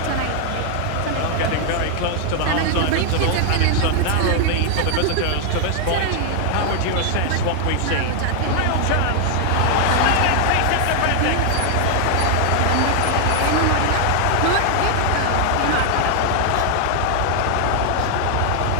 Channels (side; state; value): both; different; correlation 0.00